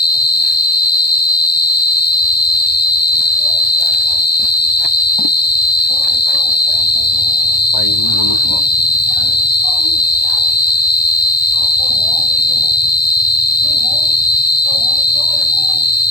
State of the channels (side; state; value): right; late; 1.2 ms